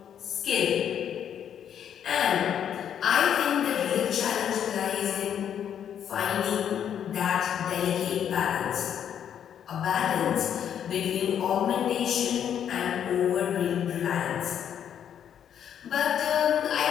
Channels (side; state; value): right; quieter; 9.1 dB